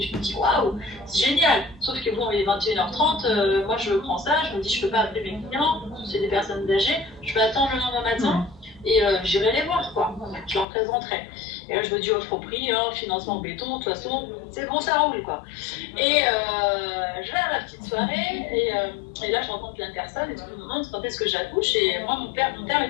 Je me dis waouh, c'est génial. Sauf que bon, il est 21h30, moi je prends ça, je me dis je peux pas appeler mes clients, c'est des personnes âgées, je peux attendre le lendemain matin. Et j'irai les voir, quoi. Je leur présenterai. Et là, je me dis offre au prix, hein, financement béton, de toute façon, c'est bon, ça roule, quoi. Et je vais à la petite soirée, et là, je rencontre la personne, et tout le monde quand est-ce que j'accouche. Et moi, mon père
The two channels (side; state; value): right; drops out; at 10.7 s